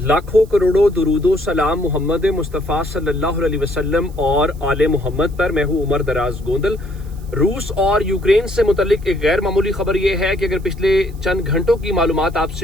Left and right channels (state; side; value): noise; right; hiss, 27 dB below the sound